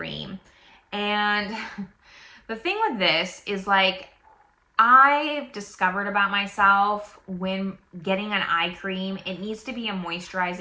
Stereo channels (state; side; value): identical; both; correlation 1.00